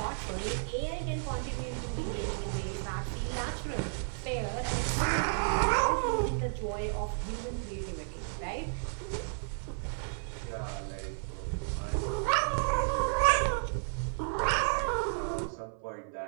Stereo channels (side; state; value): left; silent; 56 dB below the other